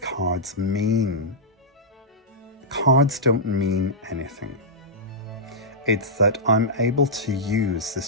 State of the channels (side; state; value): both; normal; correlation -0.10